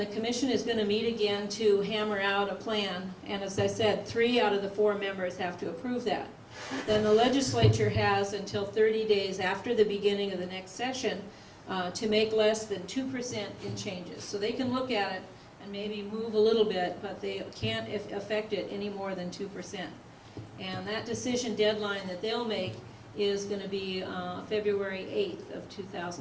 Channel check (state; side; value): identical; both; correlation 1.00